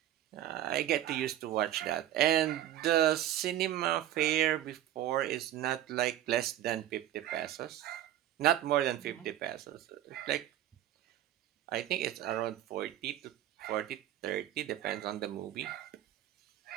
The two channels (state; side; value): quieter; left; 12.5 dB